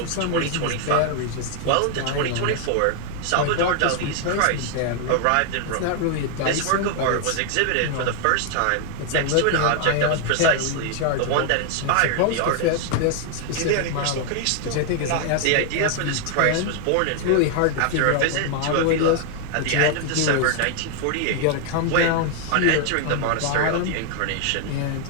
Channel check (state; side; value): different; both; correlation 0.00